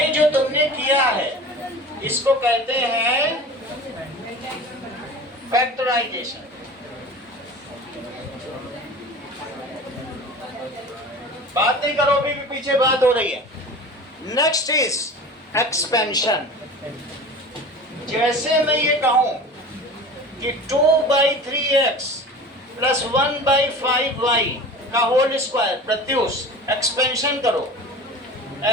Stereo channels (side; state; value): both; normal; correlation 0.37